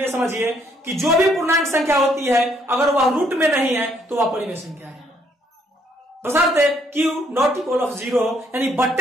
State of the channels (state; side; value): normal; both; correlation 0.69